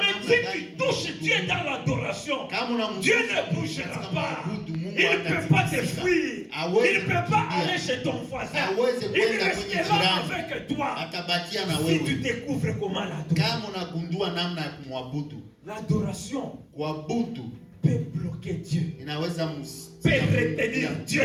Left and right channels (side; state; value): both; identical; correlation 1.00